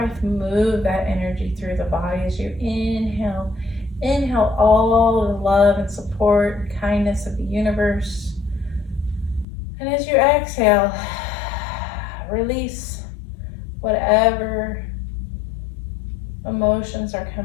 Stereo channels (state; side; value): drops out; right; at 9.5 s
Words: move that energy through the body as you inhale. Inhale all the love and support and kindness of the universe. And as you exhale, release whatever emotions are